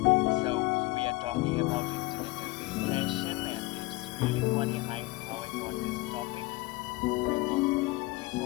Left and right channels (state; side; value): quieter; right; 21.3 dB